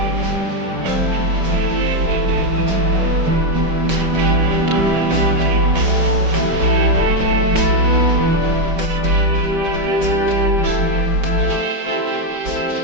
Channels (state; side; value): late; left; 5.2 ms